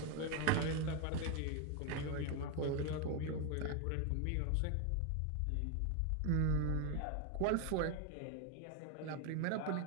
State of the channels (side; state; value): both; different; correlation 0.01